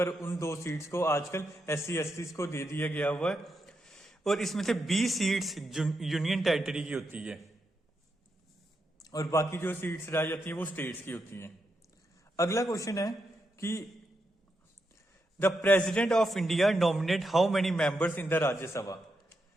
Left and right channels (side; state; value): both; normal; correlation 0.84